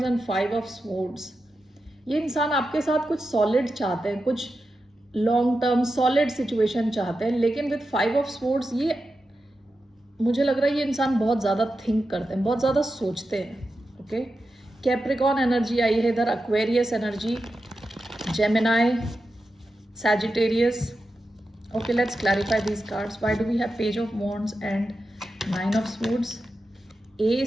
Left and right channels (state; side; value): normal; both; correlation 0.90